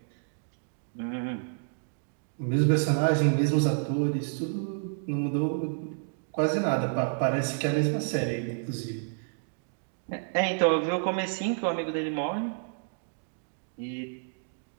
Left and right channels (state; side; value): silent; left; digital silence